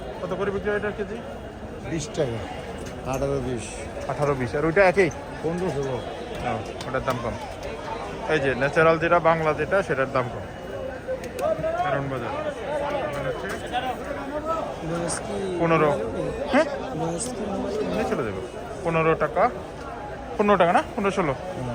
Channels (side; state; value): both; identical; correlation 1.00